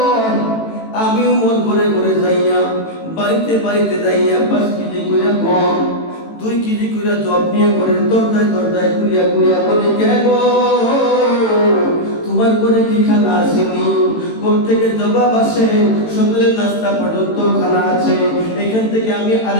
আমি উমর ঘরে ঘরে যাইয়া, বাড়িতে বাড়িতে যাইয়া 5 কেজি কইরা গম, 2 কেজি কইরা জব নিয়ে করে দরজায় দরজায় ঘুরিয়া ঘুরিয়া বলে, কে গো তোমার ঘরে কি খানা আসেনি? ঘর থেকে জবাব আসে, সকালের নাস্তা পর্যন্ত খানা আছে। এখান থেকে আমি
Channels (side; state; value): right; late; 18 ms